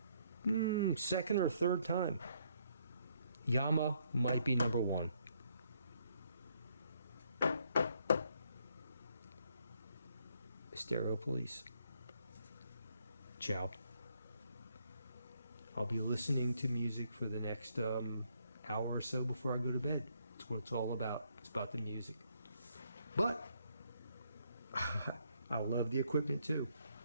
second or third time. Yamaha might be number 1. Stereo Police. Ciao. I'll be listening to music for the next hour or so before I go to bed. That's what it's all about. It's about the music. But I love the equipment too.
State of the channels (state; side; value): inverted; both; correlation -0.70